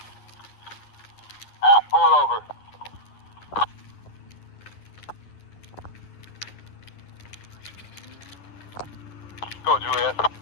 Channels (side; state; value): right; late; 9.7 ms